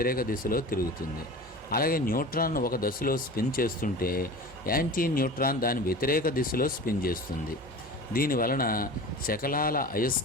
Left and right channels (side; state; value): both; normal; correlation 0.35